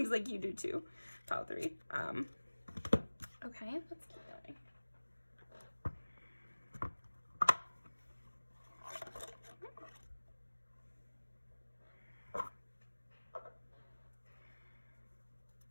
like you do too, pile 3. Okay, let's keep going.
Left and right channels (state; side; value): inverted; both; correlation -1.00